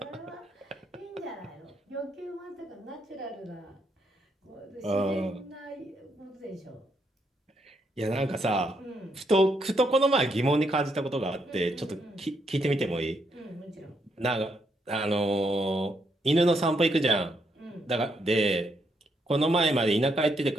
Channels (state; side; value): normal; both; correlation 0.77